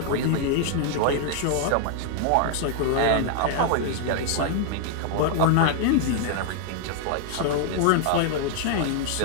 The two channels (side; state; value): both; different; correlation 0.00